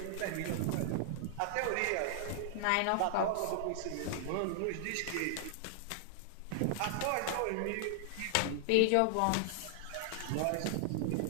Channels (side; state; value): both; different; correlation 0.00